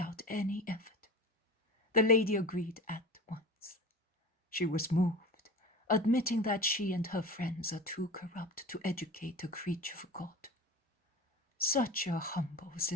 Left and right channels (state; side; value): normal; both; correlation 0.34